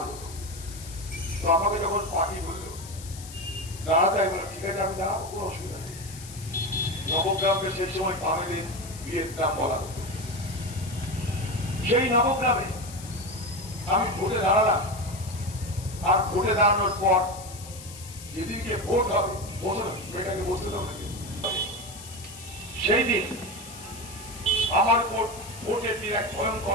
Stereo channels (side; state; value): left; noise; hiss, 15 dB below the sound